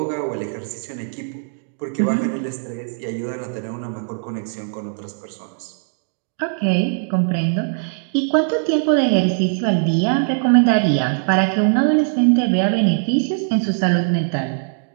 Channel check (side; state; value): left; silent; digital silence